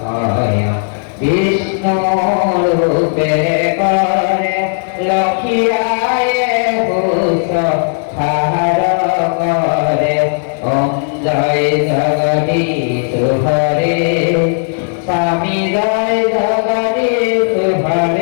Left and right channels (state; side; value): silent; right; digital silence